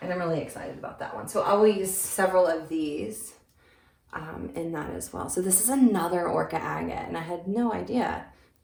And I'm really excited about that one. So I will use several of these in that as well. So this is another Orca Agate, and I had no idea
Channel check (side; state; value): both; identical; correlation 1.00